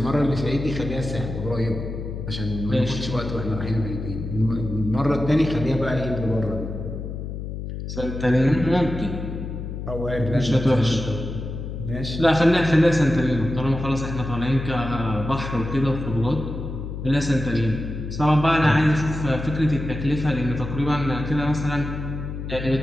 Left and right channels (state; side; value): noise; left; hum, 7 dB below the sound